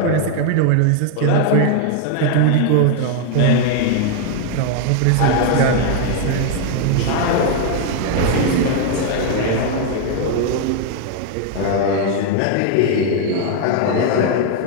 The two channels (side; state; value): both; different; correlation 0.00